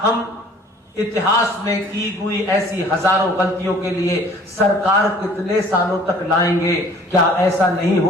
हम इतिहास में की हुई ऐसी हजारों गलतियों के लिए सरकार कितने सालों तक लाएंगे? क्या ऐसा नहीं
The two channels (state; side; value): normal; both; correlation 0.52